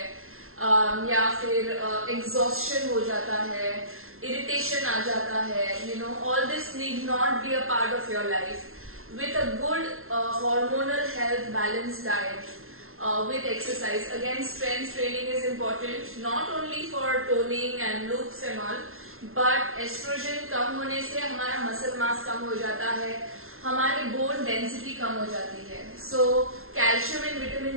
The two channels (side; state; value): left; late; 0.62 ms